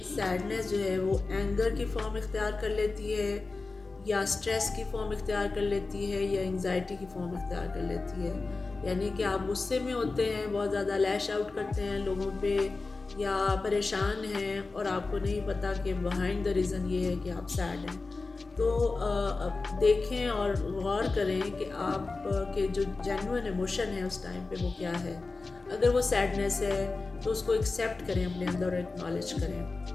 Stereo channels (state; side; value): quieter; right; 3.7 dB